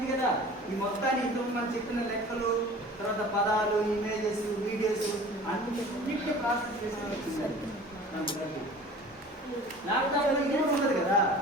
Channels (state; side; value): normal; both; correlation 0.43